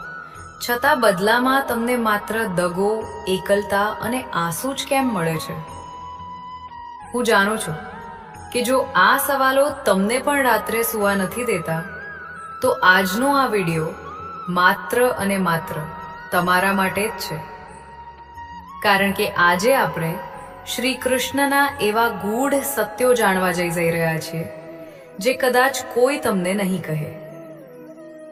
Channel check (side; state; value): both; identical; correlation 1.00